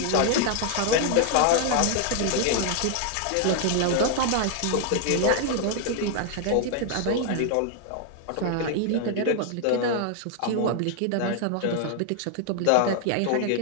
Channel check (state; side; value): different; both; correlation 0.00